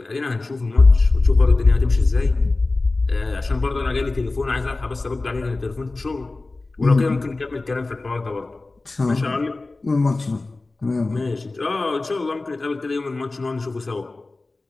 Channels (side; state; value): right; quieter; 3.3 dB